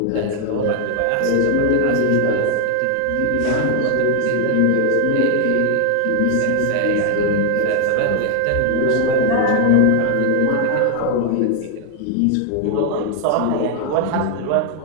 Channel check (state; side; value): different; both; correlation 0.00